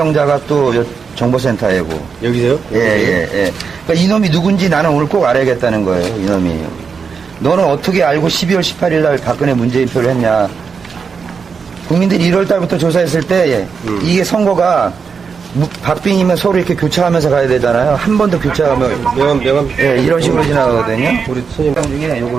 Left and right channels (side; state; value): left; quieter; 5.7 dB